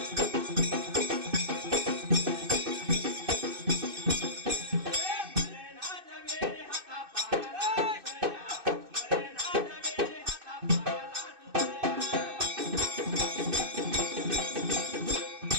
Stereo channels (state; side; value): late; left; 2.6 ms